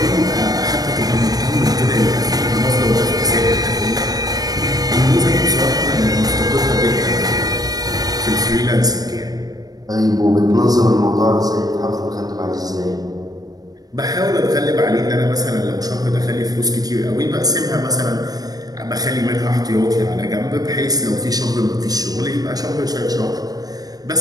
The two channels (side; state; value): left; late; 0.18 ms